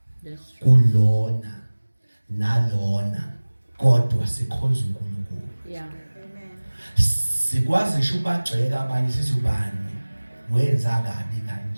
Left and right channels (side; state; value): both; inverted; correlation -1.00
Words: kulona nalona kodwa sikhonza uNkulunkulu. Yeah. Sikwazi ngisho ubagxeka abanye sithi ubani wenza kabi